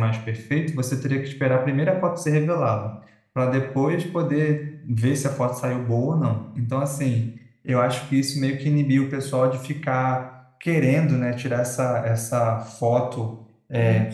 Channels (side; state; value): both; identical; correlation 1.00